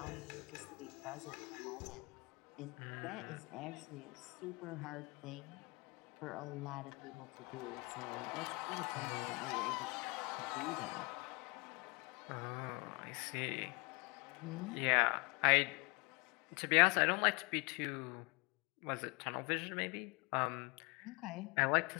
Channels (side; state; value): right; quieter; 28.9 dB